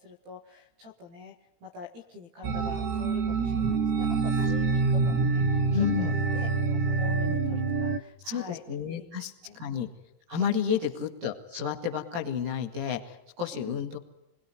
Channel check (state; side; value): late; left; 18 ms